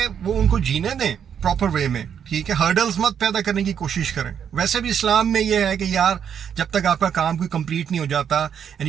वो उनको जीने दें प्रॉपर वे में, ठीक है? हर्डल्स मत पैदा करने की कोशिश करें। वैसे भी इस्लाम में ये है कि यार, जब तक आपका काम कोई कंप्लीट नहीं हो जाता and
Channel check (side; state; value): left; quieter; 8.2 dB